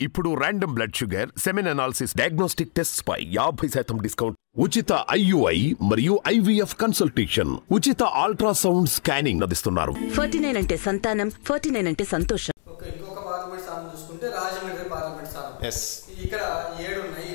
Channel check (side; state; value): right; silent; digital silence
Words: ఇప్పుడు random blood sugar, semen analysis, diagnostic tests పై 50% discount, ఉచిత IUI మరియు IVF కన్సల్టేషన్, ఉచిత అల్ట్రాసౌండ్ స్కానింగ్ అందిస్తున్నారు. 49 అంటే సంతానం, 49 అంటే సంతోషం. ఓకే, ఇంకొక పార్లమెంట్ స్థానం చూసుకుంటే రాజమండ్రి పార్లమెంట్ స్థానం. ఇక్కడ 7 ఉన్నాయి.